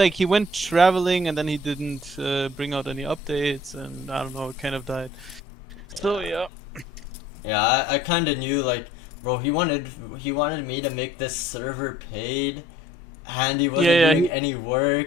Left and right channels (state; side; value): normal; both; correlation 0.56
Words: went traveling and then he didn't bring out any updates, and I don't know, it kind of died. So yeah. Yeah, I kind of knew, like, bro, he wanted me to make this server paid, and he wasn't Yeah, doing any